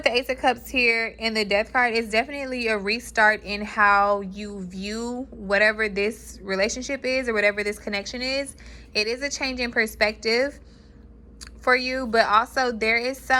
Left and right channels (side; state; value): both; identical; correlation 1.00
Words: the Ace of Cups here and the Death card, it's definitely a restart in how you view whatever this relationship is or whatever this connection is. It is a change in perspective for you, but also there is